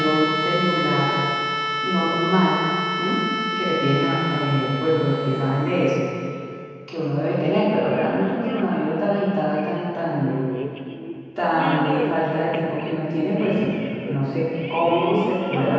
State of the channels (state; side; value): identical; both; correlation 1.00